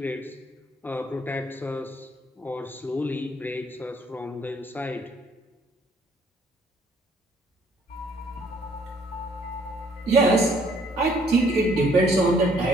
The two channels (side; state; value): both; normal; correlation 0.63